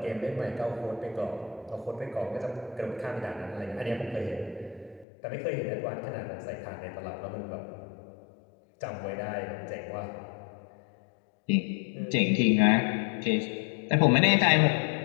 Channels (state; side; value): drops out; right; at 5.1 s